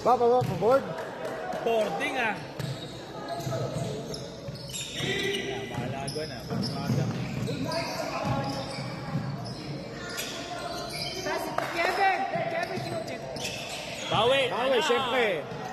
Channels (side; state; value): both; identical; correlation 1.00